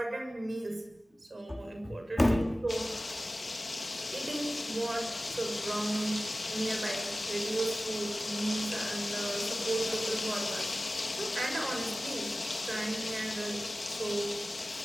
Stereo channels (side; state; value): both; normal; correlation 0.96